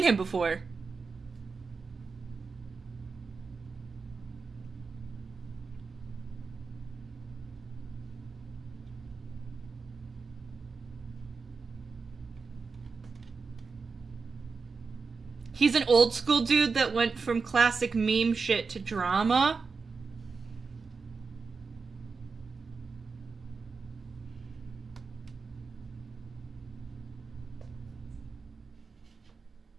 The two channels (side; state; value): left; quieter; 4.8 dB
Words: him before. He's an old school dude that went from classic meme shit to drama.